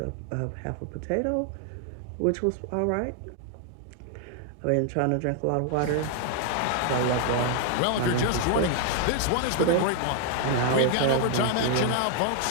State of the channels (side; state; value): both; different; correlation 0.00